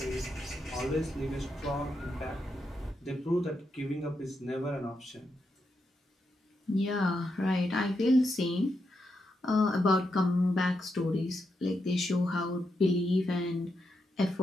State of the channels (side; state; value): both; normal; correlation 0.84